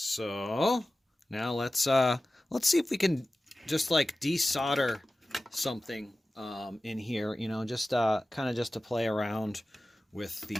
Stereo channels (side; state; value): both; normal; correlation 0.96